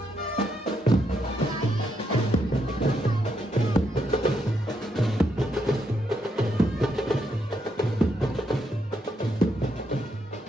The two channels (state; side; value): normal; both; correlation 0.78